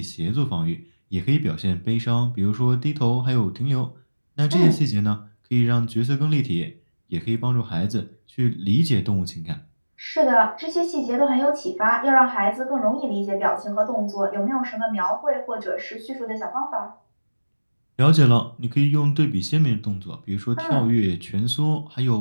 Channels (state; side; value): inverted; both; correlation -1.00